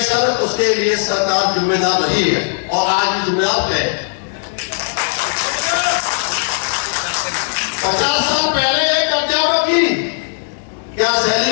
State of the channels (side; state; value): right; silent; digital silence